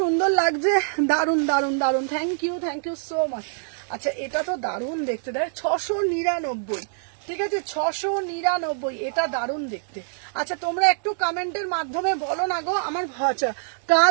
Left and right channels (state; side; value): silent; left; digital silence